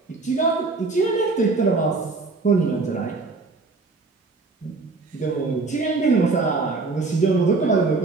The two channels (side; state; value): left; quieter; 3.9 dB